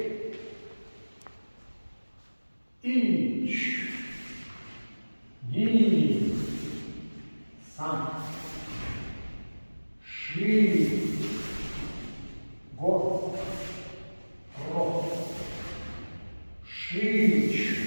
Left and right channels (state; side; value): inverted; both; correlation -1.00